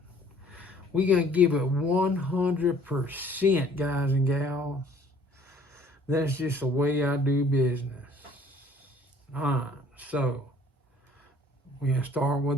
We're going to give it 100%, guys and gals. That's just the way I do business. All right, so we're going to start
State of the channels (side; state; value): both; normal; correlation 0.56